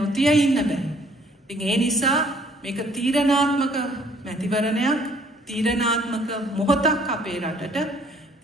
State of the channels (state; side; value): normal; both; correlation 0.59